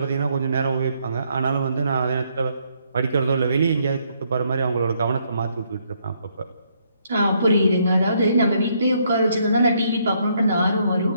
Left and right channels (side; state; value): both; inverted; correlation -0.72